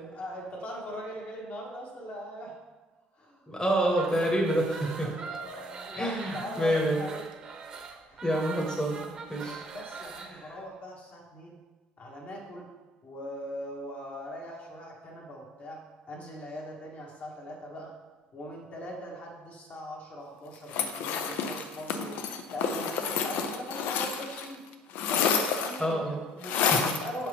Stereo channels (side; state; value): both; normal; correlation 0.56